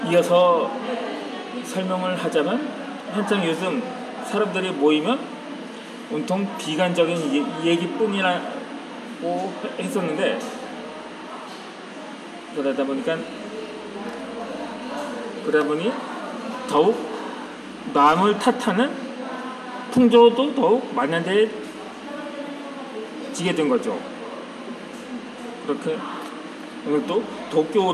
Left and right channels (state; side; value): identical; both; correlation 1.00